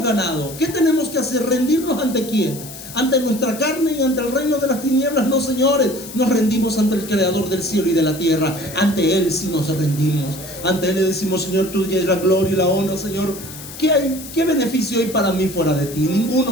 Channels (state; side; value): noise; left; hiss, 13 dB below the sound